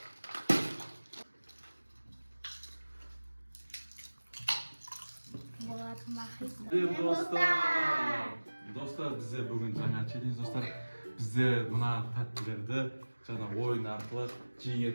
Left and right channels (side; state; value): both; inverted; correlation -1.00